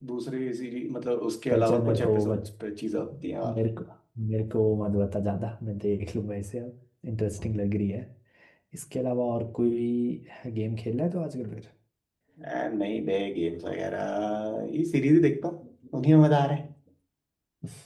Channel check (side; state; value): both; identical; correlation 1.00